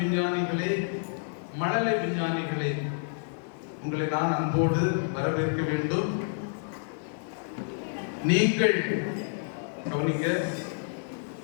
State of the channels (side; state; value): right; silent; digital silence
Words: மழலை விஞ்ஞானிகளே, உங்களை நான் அன்போடு வரவேற்க வேண்டும். நீங்கள் கவனிங்க